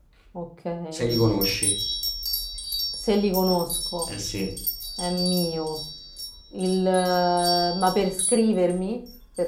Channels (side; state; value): both; identical; correlation 1.00